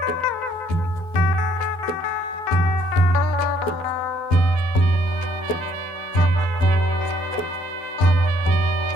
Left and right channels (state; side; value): late; right; 12 ms